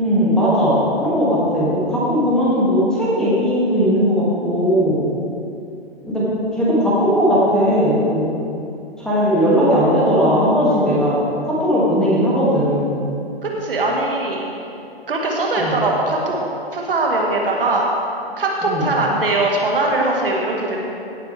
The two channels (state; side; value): normal; both; correlation 0.20